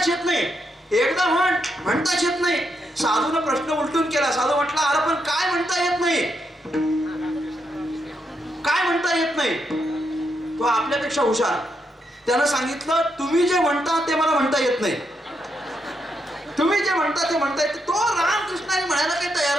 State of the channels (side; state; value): both; normal; correlation 0.81